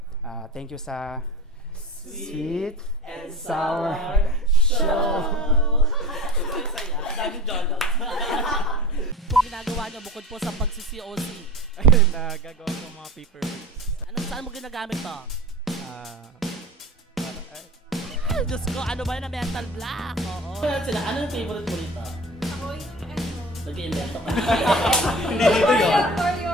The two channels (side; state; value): both; normal; correlation 0.35